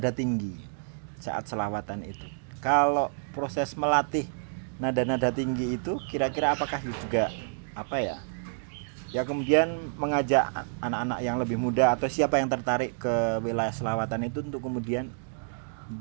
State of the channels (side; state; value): left; silent; digital silence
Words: tinggi saat selawatan itu. Kalau proses melatih nada-nada tinggi itu kira-kira apakah juga apa ya? Ya kemudian mengajak anak-anak yang lebih muda atau siapa yang tertarik ke wilayah selawatan itu untuk kemudian